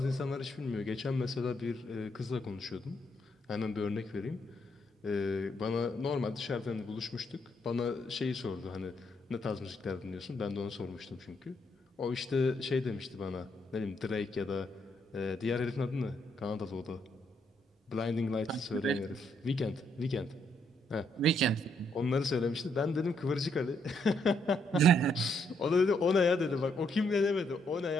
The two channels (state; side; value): normal; both; correlation 0.74